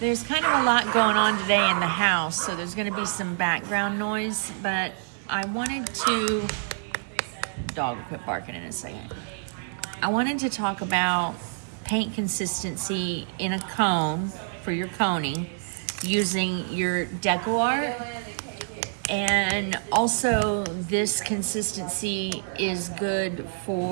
there's kind of a lot going on today in the house, so there's going to be some background noise, but I wanted to, dog will quit barking in a second. I wanted to talk about paint consistency in a cone for your coning using your decoart, and also this consistency is good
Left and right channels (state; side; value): silent; left; digital silence